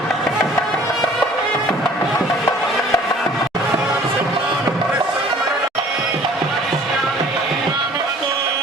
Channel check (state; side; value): normal; both; correlation 0.52